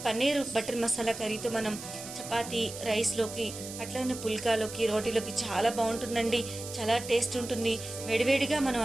పన్నీర్ బటర్ మసాలా కర్రీతో మనం చపాతీ, రైస్లోకి, అట్లనే పుల్కాలోకి, రోటీలోకి చాలా బాగుంటుందండి. చాలా టేస్ట్ ఉంటుంది. వేడివేడిగా మనం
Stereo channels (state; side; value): noise; right; hiss, 11 dB below the sound